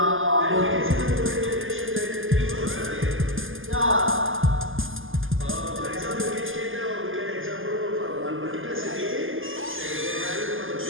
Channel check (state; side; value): late; left; 0.59 ms